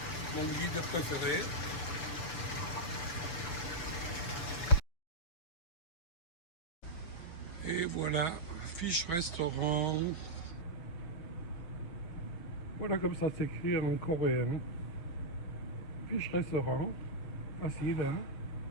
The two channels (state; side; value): late; right; 6.4 ms